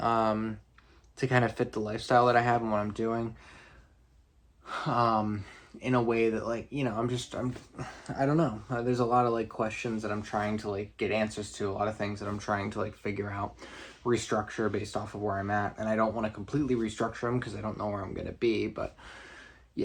kind of fit the lifestyle that I have and what I'm doing in a way that like, you know, I don't know. There's a lot of like questions that I'm trying to like get answers to, a lot of things that I'm trying to like figure out, restructure based off of where I'm at. And I don't want to completely restructure them because I don't know where I'm going to be, but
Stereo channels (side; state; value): both; identical; correlation 1.00